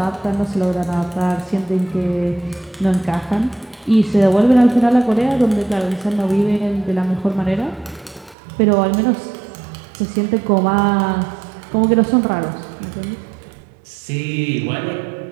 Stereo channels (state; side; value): drops out; left; at 8.3 s